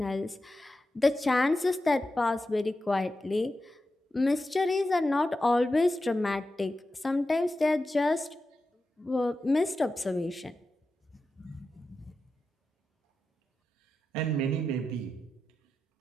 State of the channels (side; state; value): both; normal; correlation 0.91